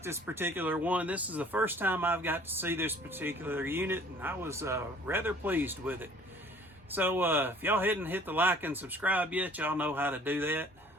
this particular one. This is the first time I've got to see this particular unit, and I was rather pleased with it. So if y'all hadn't hit the like and subscribe yet, y'all know how to do that.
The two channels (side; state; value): both; normal; correlation 0.53